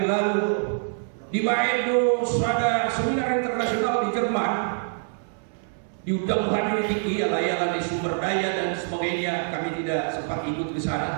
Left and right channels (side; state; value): left; silent; digital silence